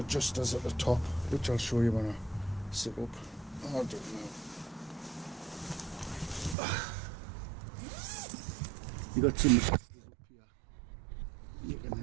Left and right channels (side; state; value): left; drops out; at 6.6 s